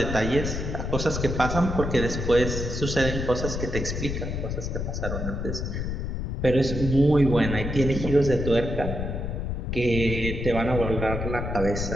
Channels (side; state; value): left; noise; rumble, 3 dB below the sound